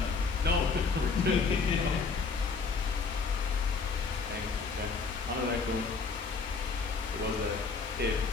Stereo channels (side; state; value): right; quieter; 4.8 dB